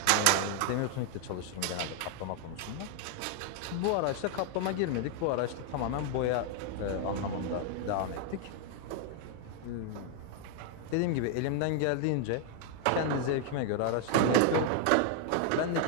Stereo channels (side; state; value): both; different; correlation 0.00